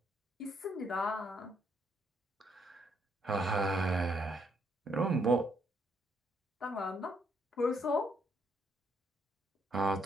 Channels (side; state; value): both; normal; correlation 0.72